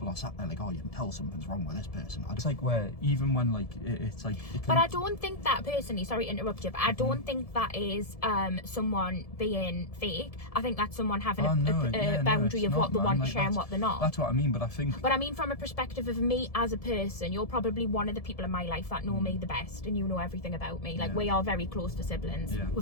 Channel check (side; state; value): right; late; 1.7 ms